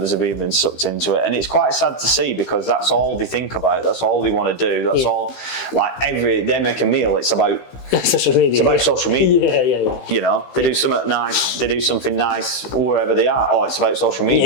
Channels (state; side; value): late; right; 15 ms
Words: have even been sucked into it, and it's quite sad to see, because that's all they think about, that's all they want to do, that's all, like, they make a meal, it's about social media. It's about social media. Yeah. You know, they do something nice wherever they are. Oh, it's about social